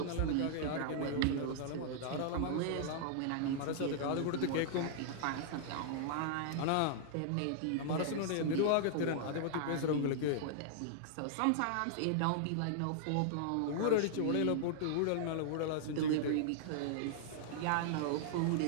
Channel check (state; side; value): different; both; correlation -0.01